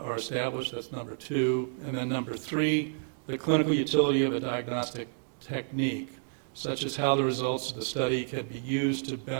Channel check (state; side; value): silent; left; digital silence